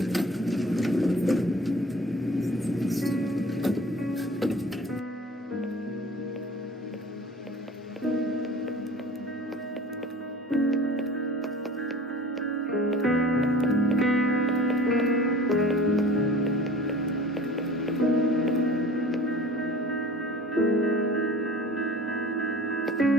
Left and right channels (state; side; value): normal; both; correlation 0.43